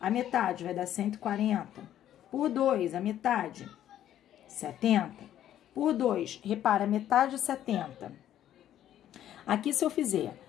a metade vai dar 140. Por 2, a metade, 70. Por 2, repara, metade 70. Aqui, se eu fizer,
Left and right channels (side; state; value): right; quieter; 11.5 dB